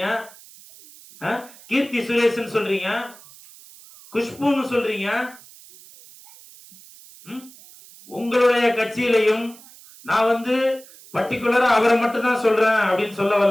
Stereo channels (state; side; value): noise; right; hiss, 22 dB below the sound